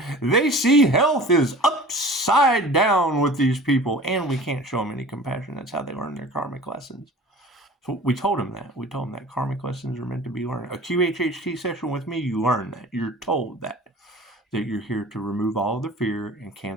They see health is upside down with these people, and we can't show them any compassion. That's how they learn their karmic lessons. So we told them that. We told them that karmic lessons are meant to be learned. A QHHT session with me, you learn that. You're told that you're here to remove all of the fear and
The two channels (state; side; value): normal; both; correlation 0.42